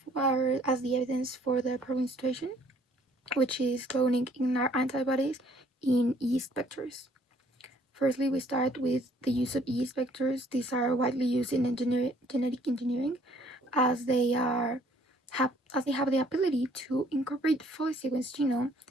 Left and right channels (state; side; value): normal; both; correlation 0.61